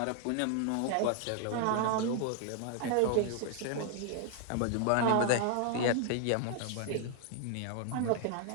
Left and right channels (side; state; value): both; different; correlation 0.00